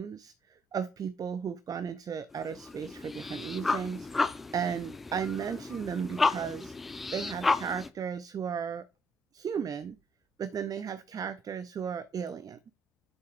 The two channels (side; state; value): both; normal; correlation 0.73